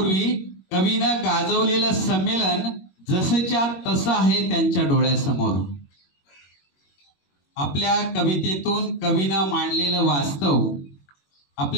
कवीनं गाजवलेलं संमेलन जसंच्या तसं आहे त्यांच्या डोळ्यासमोर. आपल्या कवितेतून कवीनं मांडलेलं वास्तव,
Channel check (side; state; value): right; late; 21 ms